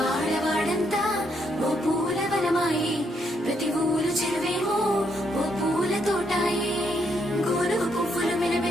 ఓ పూల వనమాయే, ప్రతి ఊరు చెరువేమో ఓ పూల తోటాయే. గోరుగు పువ్వులు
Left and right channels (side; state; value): both; normal; correlation 0.75